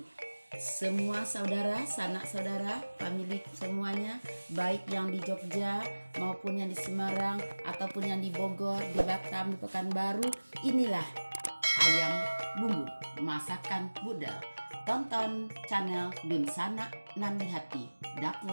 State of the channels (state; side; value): inverted; both; correlation -1.00